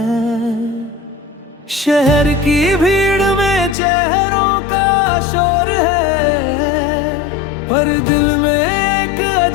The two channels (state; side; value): drops out; right; at 3.8 s